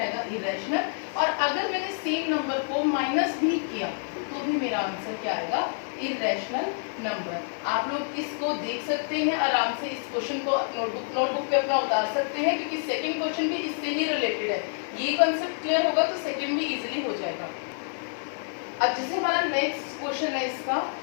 आएगा, इरैशनल। और अगर मैंने सेम नंबर को माइनस भी किया तो भी मेरा आंसर क्या आएगा, इरैशनल नंबर। आप लोग इसको देख सकते हैं आराम से, इस क्वेश्चन को नोटबुक पे अपना उतार सकते हैं, क्योंकि सेकंड क्वेश्चन भी इससे ही रिलेटेड है। ये कंसेप्ट क्लियर होगा तो सेकंड भी इजीली हो जाएगा। अब जैसे हमारा नेक्स्ट क्वेश्चन है इसका,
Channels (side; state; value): right; silent; digital silence